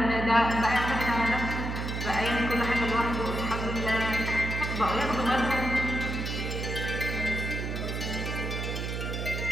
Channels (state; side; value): noise; right; hum, 3 dB below the sound